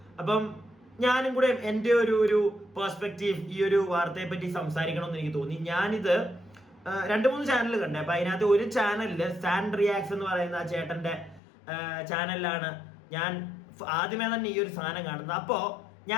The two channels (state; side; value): drops out; right; at 11.4 s